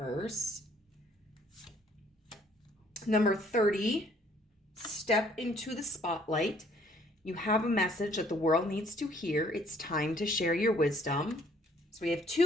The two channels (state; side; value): normal; both; correlation 0.61